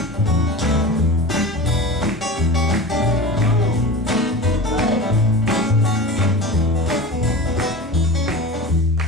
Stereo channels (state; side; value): normal; both; correlation 0.32